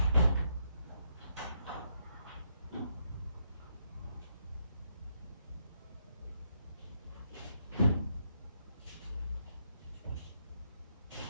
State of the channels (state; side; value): inverted; both; correlation -0.77